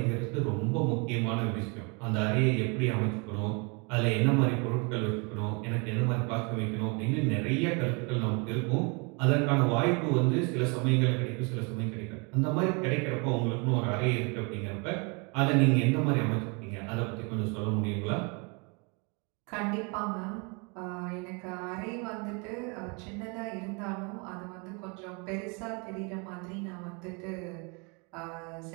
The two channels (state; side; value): quieter; left; 32.2 dB